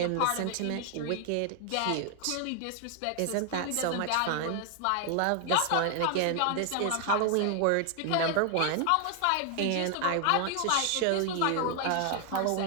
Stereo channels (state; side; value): different; both; correlation 0.00